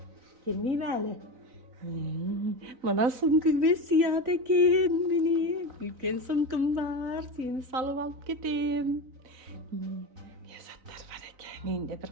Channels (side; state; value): left; late; 3.9 ms